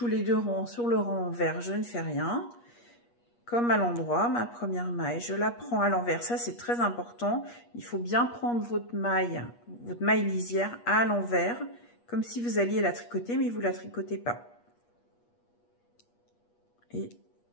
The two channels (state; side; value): late; right; 8.4 ms